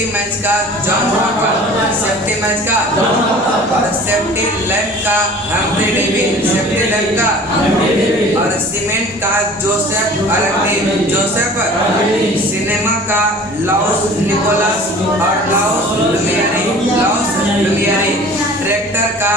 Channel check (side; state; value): both; normal; correlation 0.45